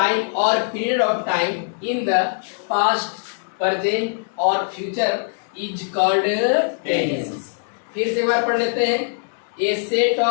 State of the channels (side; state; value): right; silent; digital silence